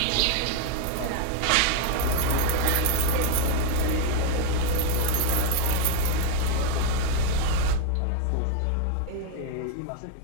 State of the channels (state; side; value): different; both; correlation 0.01